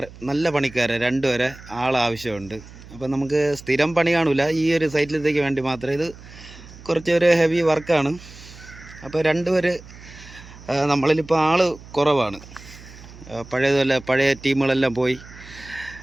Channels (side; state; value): right; noise; hum, 19 dB below the sound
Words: നല്ല പണിക്കാരെ 2 വരെ ആവശ്യമുണ്ട്. അപ്പോൾ നമുക്ക് സ്ഥിരം പണി കാണില്ല, ഈ ഒരു സൈറ്റിലത്തേക്ക് വേണ്ടി മാത്രം. ഇത് കുറച്ചൊരു ഹെവി വർക്കാണ്. അപ്പോൾ 2 പേര് നമ്മളിലിപ്പോൾ ആൾ കുറവാണ്. പഴയ ടീമുകളെല്ലാം പോയി.